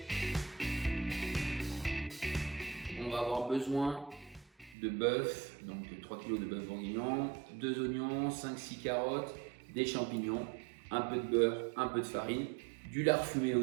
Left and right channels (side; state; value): left; drops out; at 4.8 s